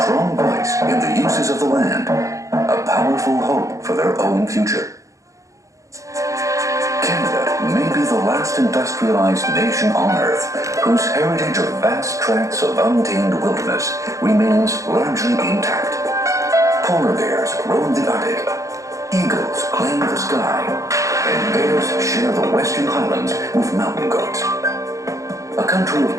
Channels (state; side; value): late; left; 0.15 ms